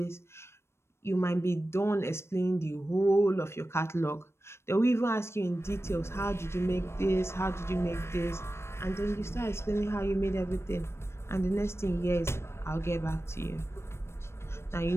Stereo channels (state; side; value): late; right; 0.12 ms